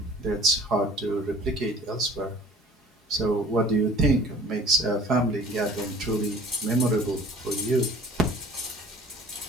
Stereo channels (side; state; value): both; normal; correlation 0.48